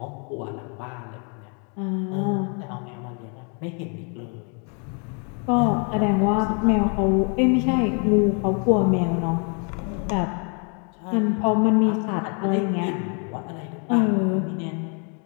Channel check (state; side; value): quieter; right; 38.1 dB